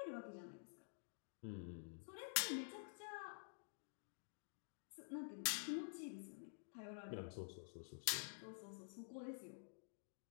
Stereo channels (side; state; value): right; silent; digital silence